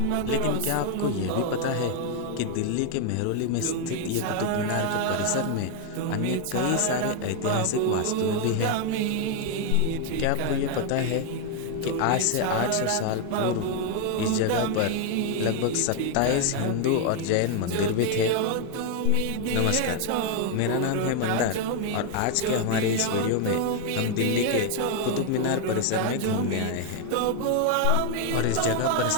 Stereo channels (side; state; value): both; different; correlation 0.01